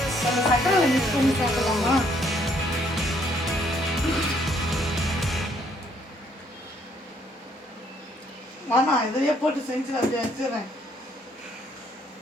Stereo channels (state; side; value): normal; both; correlation 0.67